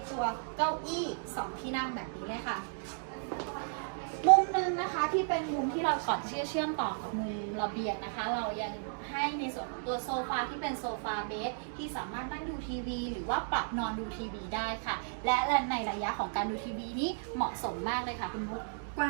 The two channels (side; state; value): left; silent; digital silence